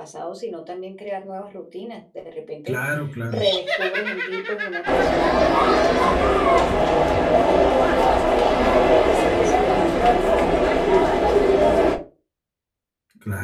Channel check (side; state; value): both; identical; correlation 1.00